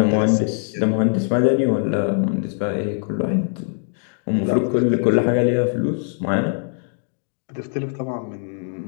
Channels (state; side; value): silent; right; 59 dB below the other